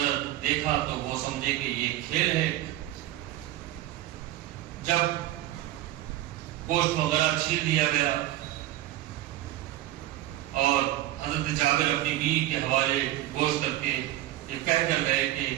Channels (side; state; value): left; quieter; 14.9 dB